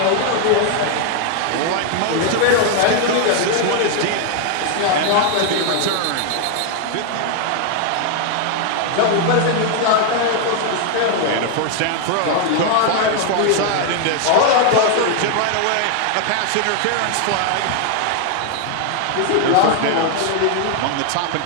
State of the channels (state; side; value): different; both; correlation 0.00